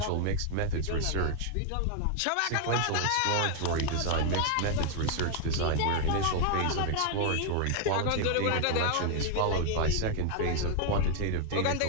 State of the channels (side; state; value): both; different; correlation 0.00